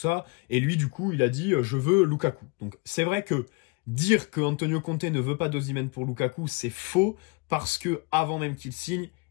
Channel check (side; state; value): right; quieter; 27.4 dB